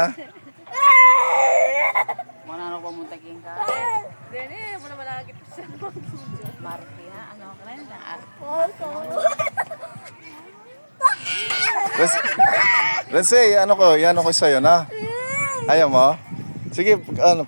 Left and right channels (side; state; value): both; inverted; correlation -1.00